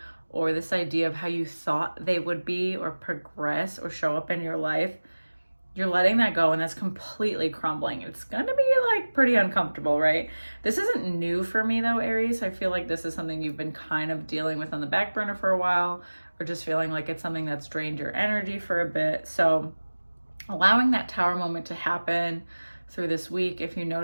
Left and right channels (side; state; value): both; inverted; correlation -1.00